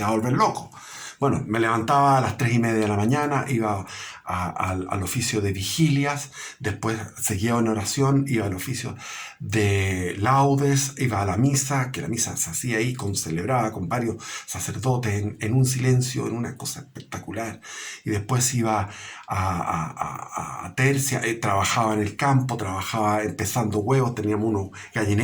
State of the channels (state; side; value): identical; both; correlation 1.00